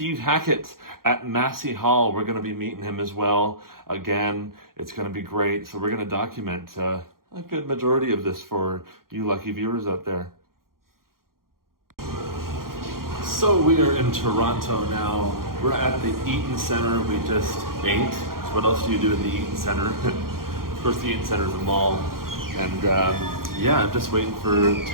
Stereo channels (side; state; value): left; late; 0.92 ms